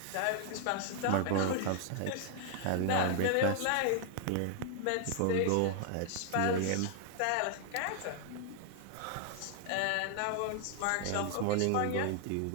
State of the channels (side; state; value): both; different; correlation 0.00